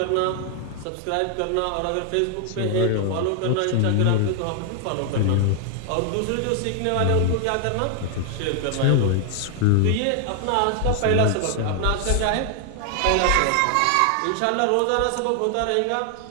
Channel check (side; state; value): both; different; correlation 0.00